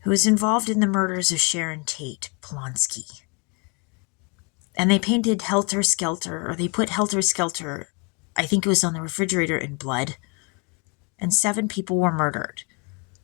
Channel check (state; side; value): quieter; right; 32.6 dB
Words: who was involved in the murders of Sharon Tate Polonsky. And they painted Helter Skelter, or they put Helter Skelter, I think it was on the refrigerator, in blood, and 7 people were murdered.